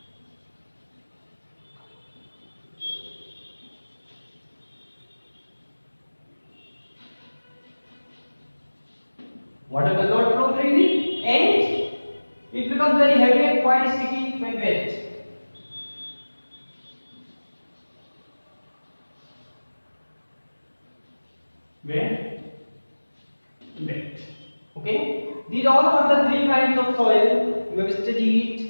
Water does not flow freely, and it becomes very heavy and quite sticky when wet. Wet. Okay, these all are the three kinds of soil you have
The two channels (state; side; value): inverted; both; correlation -1.00